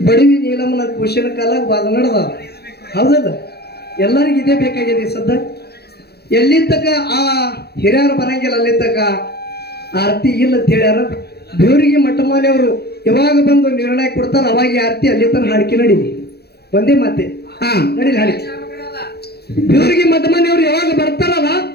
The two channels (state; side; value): late; right; 0.47 ms